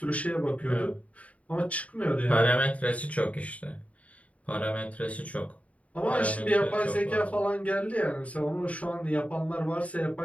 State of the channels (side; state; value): right; late; 0.067 ms